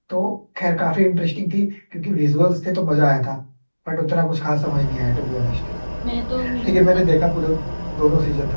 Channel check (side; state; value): both; inverted; correlation -1.00